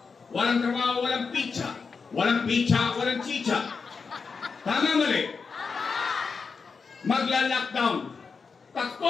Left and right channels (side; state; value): right; quieter; 5.1 dB